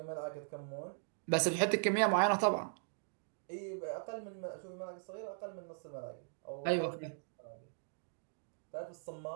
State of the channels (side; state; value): left; silent; digital silence